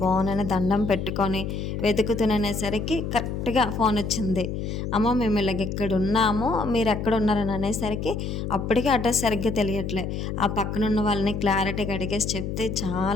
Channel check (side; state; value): left; noise; hum, 4 dB below the sound